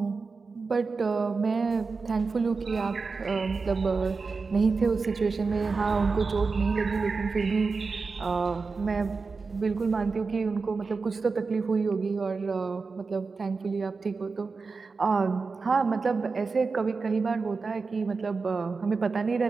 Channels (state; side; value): quieter; left; 4.4 dB